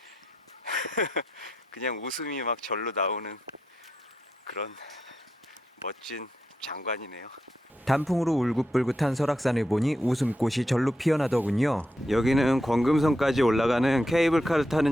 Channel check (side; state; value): both; normal; correlation 0.83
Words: 그냥 웃음이 막 절로 나오는 그런 멋진 장관이네요. 단풍으로 울긋불긋한 설악산을 보니 웃음꽃이 절로 피어나더군요. 여기는 권금성까지 올라가는 케이블카를 타는